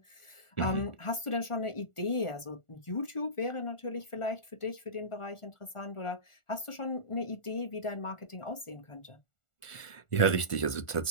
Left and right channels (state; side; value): late; right; 1.4 ms